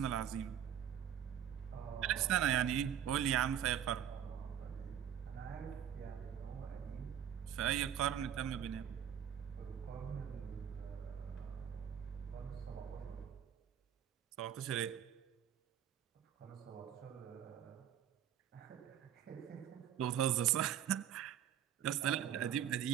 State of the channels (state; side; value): quieter; left; 9.6 dB